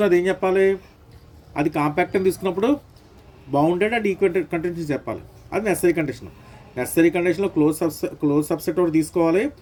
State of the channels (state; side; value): identical; both; correlation 1.00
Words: ఏం చెప్పాలి, అది కాంపాక్ట్ అని తీసుకున్నప్పుడు బౌండెడ్ అండ్ ఈక్వి కంటిన్యూస్ చెప్పాలి. అది నెసరీ కండిషన్. నెసరీ కండిషన్లో క్లోజ్ సబ్సెట్ ఒకటి తీసుకోవాలి,